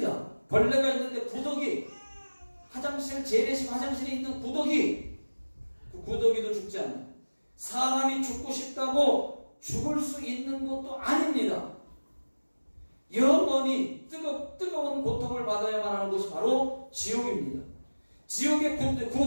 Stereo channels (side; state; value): both; inverted; correlation -1.00